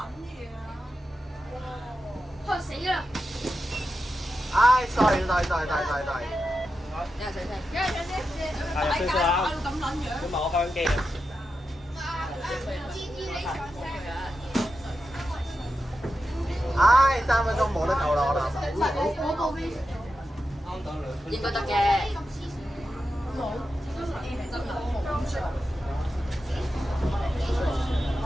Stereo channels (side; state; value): both; normal; correlation 0.90